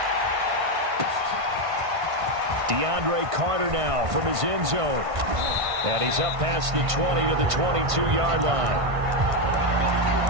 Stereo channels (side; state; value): left; late; 1.5 ms